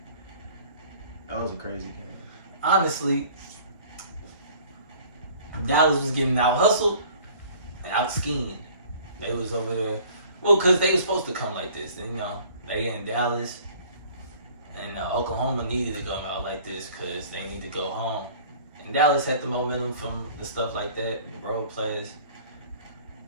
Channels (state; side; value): inverted; both; correlation -0.50